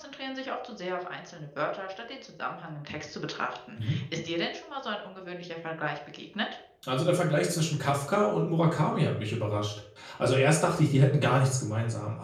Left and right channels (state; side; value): identical; both; correlation 1.00